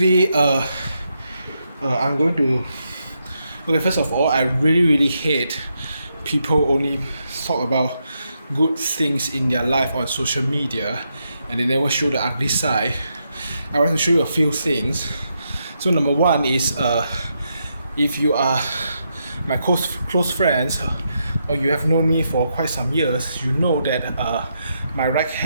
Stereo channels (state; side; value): inverted; both; correlation -0.81